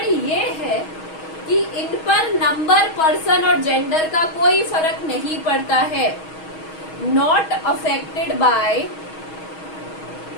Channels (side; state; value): right; late; 6.3 ms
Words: ये है कि इन पर नंबर, पर्सन और जेंडर का कोई फर्क नहीं पड़ता है। Not affected by